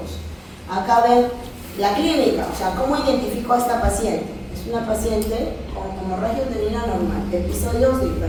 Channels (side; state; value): both; identical; correlation 1.00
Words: Acá ven la clínica, o sea, ¿cómo identifico a esta paciente? Es una paciente con hemorragia uterina normal, episodios de